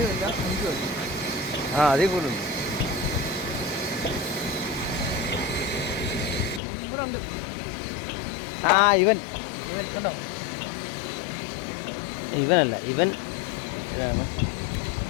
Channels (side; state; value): right; drops out; at 6.6 s